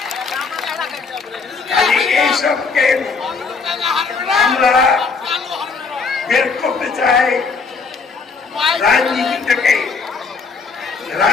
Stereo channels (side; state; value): right; quieter; 4.8 dB